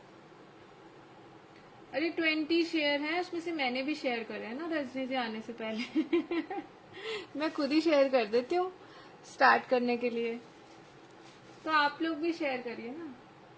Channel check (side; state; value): both; identical; correlation 1.00